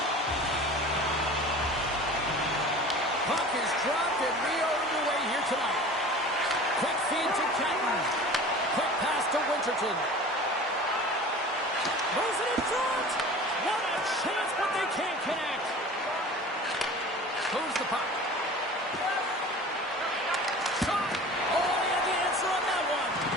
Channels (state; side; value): normal; both; correlation 0.40